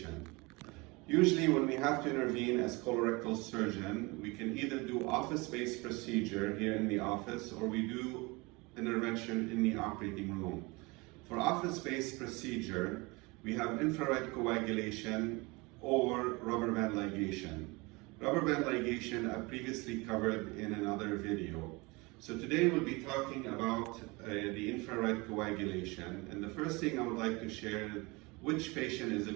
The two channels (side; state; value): left; quieter; 25.6 dB